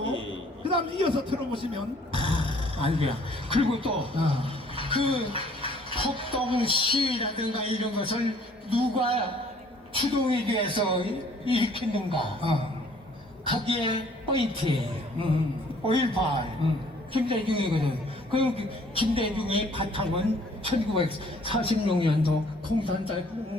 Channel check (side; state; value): both; normal; correlation 0.58